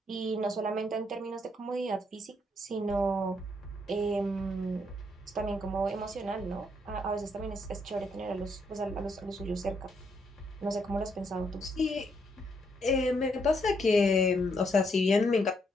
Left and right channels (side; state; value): both; normal; correlation 0.74